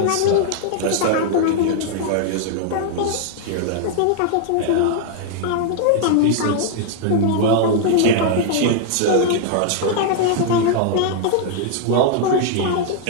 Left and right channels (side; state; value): both; different; correlation -0.01